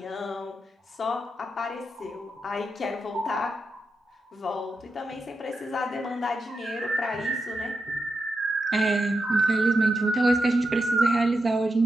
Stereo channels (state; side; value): normal; both; correlation 0.87